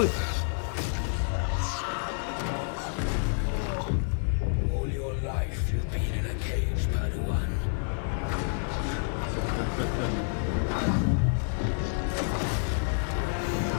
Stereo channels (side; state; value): right; silent; 59 dB below the other